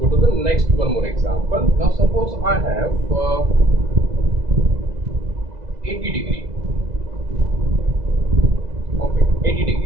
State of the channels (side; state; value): left; late; 2.0 ms